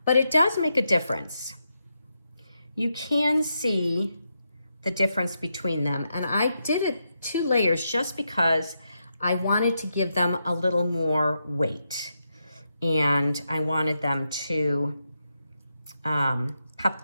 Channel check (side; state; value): both; inverted; correlation -0.84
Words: but it does make a difference. You can see the difference between them. And I did it 2 layers just because I wanted to give them a little more weight. And I wanted them to